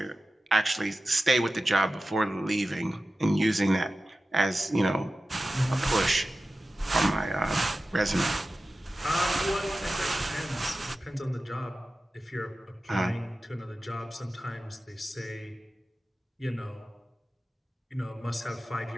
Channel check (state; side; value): normal; both; correlation 0.94